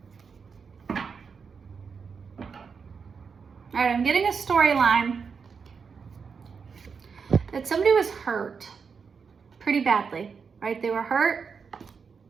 All right, I'm getting a storyline that somebody was hurt pretty badly, right? They were hurt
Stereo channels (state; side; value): quieter; left; 5.8 dB